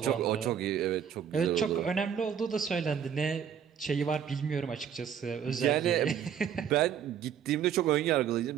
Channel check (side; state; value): left; quieter; 8.4 dB